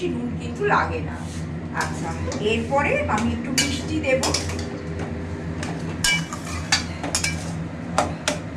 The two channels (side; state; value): both; identical; correlation 1.00